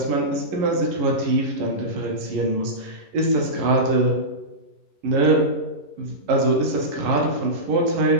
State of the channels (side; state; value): left; late; 11 ms